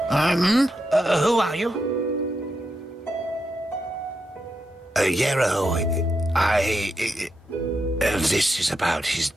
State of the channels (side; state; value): both; normal; correlation 0.85